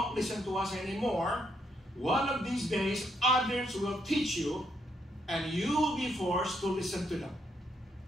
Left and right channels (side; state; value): both; normal; correlation 0.75